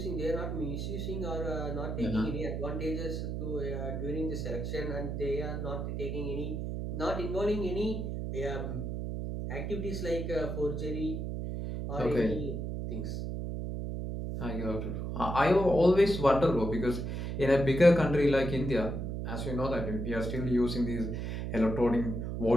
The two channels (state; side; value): noise; right; hum, 3 dB below the sound